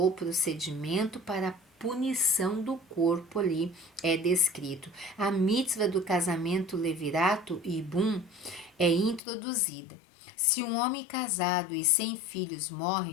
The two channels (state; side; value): drops out; right; at 9.2 s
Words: procedimento para a punição do corpo ali é descrito. A mitzvah do casamento levirato e bum é introduzida. Se um homem casado e sem filhos